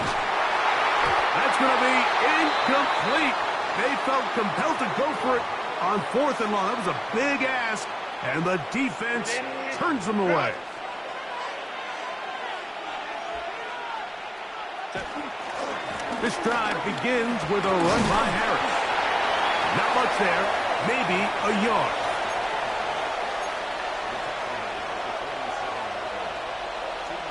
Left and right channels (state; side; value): identical; both; correlation 1.00